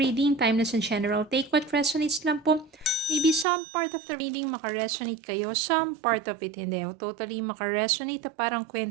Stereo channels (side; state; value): left; drops out; at 3.5 s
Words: timeless and general. Take what resonates lang po. Maybe some part of the reading makaresonate kayo, some part of it hindi. O totally makaresonate, parang